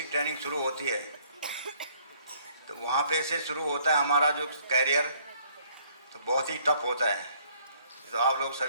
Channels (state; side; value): inverted; both; correlation -0.63